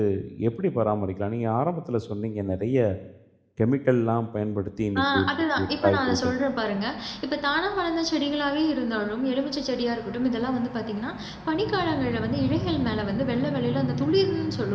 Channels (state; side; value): identical; both; correlation 1.00